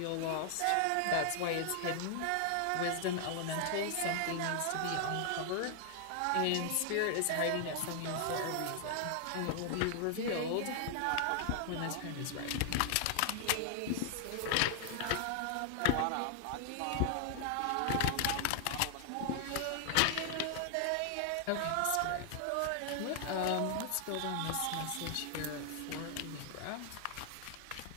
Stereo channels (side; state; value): both; different; correlation 0.00